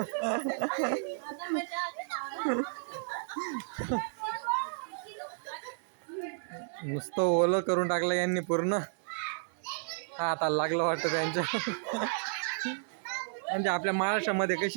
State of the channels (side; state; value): left; silent; digital silence